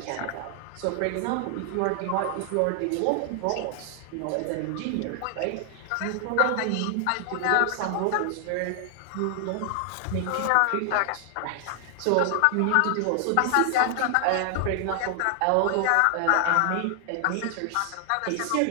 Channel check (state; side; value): different; both; correlation 0.00